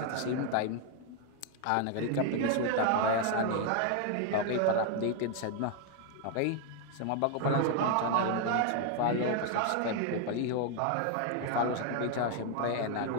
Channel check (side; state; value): both; different; correlation 0.01